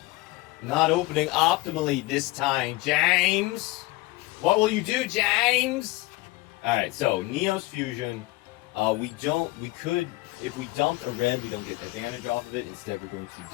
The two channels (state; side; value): quieter; right; 19.9 dB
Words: Not opening optimally this time, James! What will you do, James? Alright, so Neos Fusion, if we dumped a red, we don't get the advantage off of it. Instead, we're going